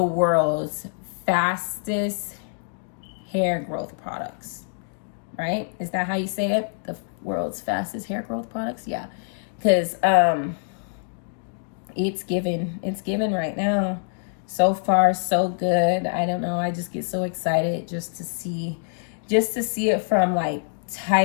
world's fastest hair growth products, right? Is that how you say it? The world's fastest hair growth products? Yeah, because it's given right now. So far, so good. I don't know. I just get so excited just to see it from like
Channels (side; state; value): right; silent; digital silence